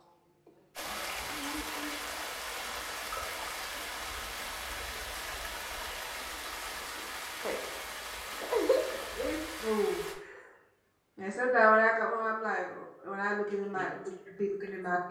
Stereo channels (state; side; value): identical; both; correlation 1.00